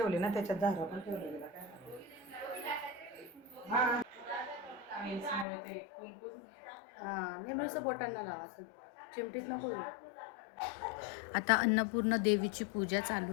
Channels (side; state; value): right; drops out; at 5.5 s